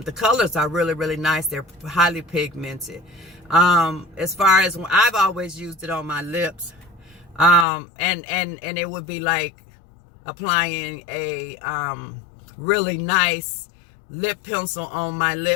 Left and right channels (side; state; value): right; drops out; at 7.7 s